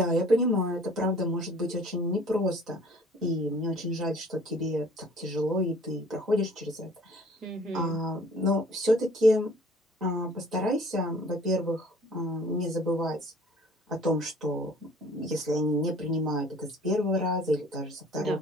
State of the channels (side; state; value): both; normal; correlation 0.52